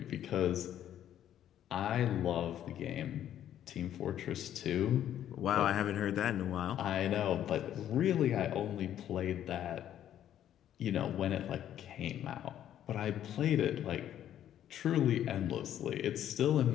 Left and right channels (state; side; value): quieter; right; 11.0 dB